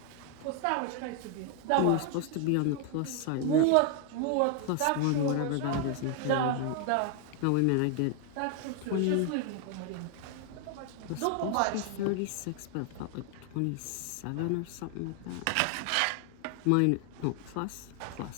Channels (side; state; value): both; different; correlation 0.00